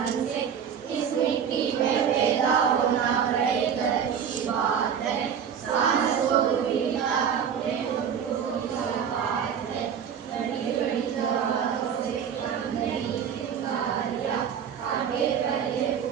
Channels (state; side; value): quieter; left; 7.9 dB